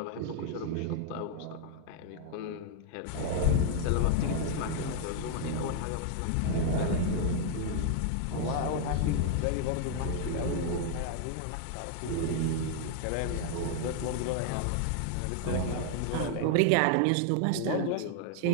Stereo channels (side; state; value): both; different; correlation 0.00